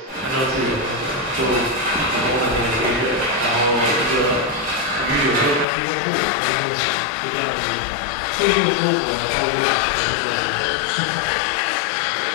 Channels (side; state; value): right; drops out; at 5.7 s